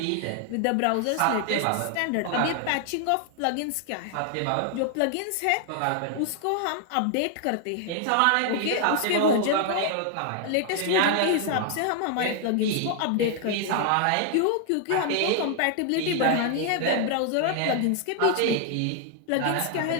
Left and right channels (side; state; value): both; different; correlation 0.00